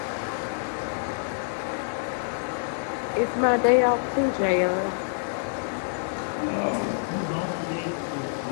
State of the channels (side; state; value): right; silent; 60 dB below the other